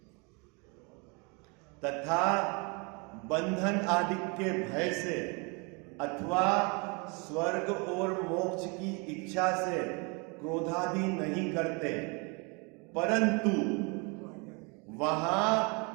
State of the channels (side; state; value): left; quieter; 31.2 dB